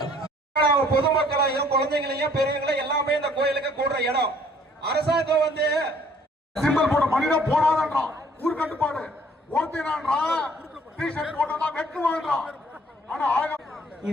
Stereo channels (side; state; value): both; normal; correlation 0.59